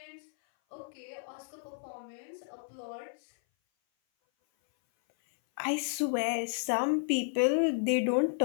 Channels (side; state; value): right; silent; 56 dB below the other